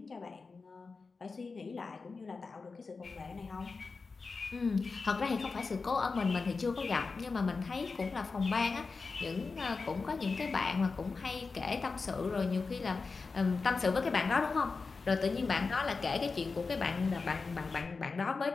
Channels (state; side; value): quieter; right; 4.4 dB